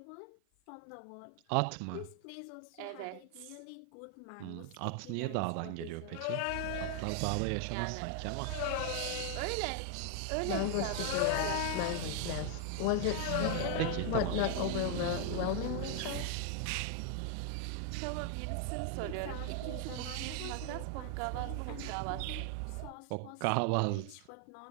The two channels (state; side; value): different; both; correlation 0.00